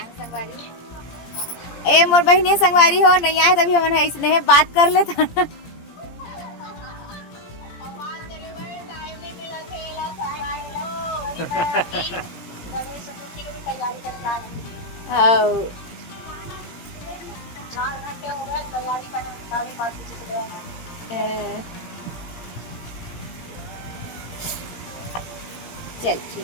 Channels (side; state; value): right; late; 17 ms